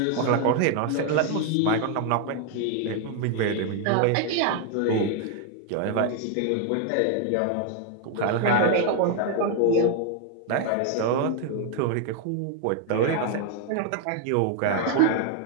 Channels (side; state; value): both; different; correlation 0.01